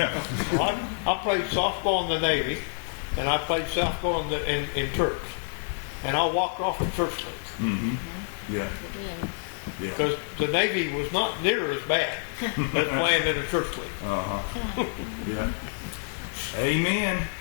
I played softball in the Navy, and I played softball in church. And I walked off the church league. Yeah. Because the Navy was not near as bad as playing in a church league. Yeah. Amen.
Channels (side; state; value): right; silent; digital silence